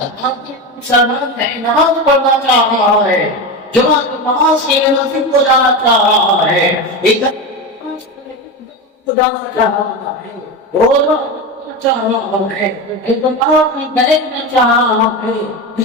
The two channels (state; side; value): normal; both; correlation 0.20